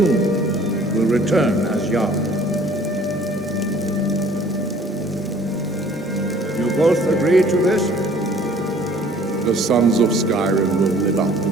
will return as Jarl. You both agree to this? The sons of Skyrim will live up to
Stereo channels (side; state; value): both; normal; correlation 0.54